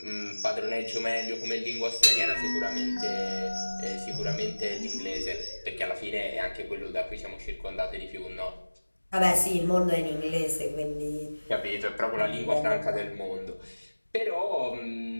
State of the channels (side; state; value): both; inverted; correlation -1.00